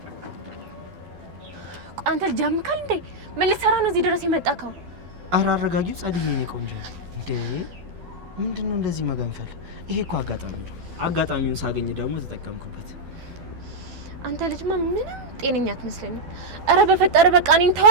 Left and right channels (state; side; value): late; left; 12 ms